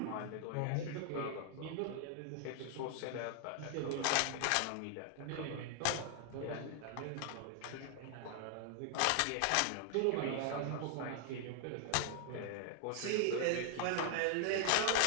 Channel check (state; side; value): different; both; correlation 0.00